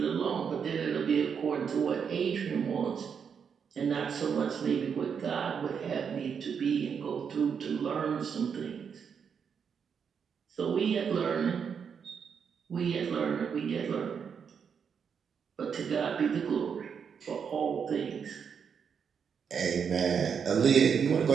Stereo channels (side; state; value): left; quieter; 6.8 dB